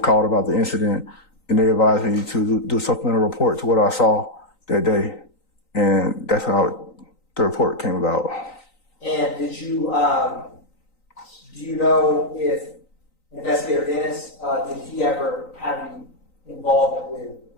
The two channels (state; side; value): late; right; 3.9 ms